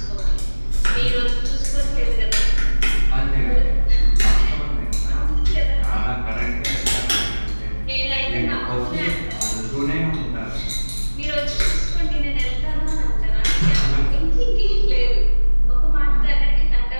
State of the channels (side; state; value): both; inverted; correlation -1.00